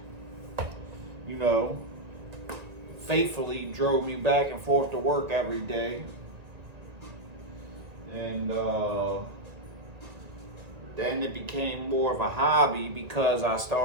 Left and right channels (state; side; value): late; left; 1.9 ms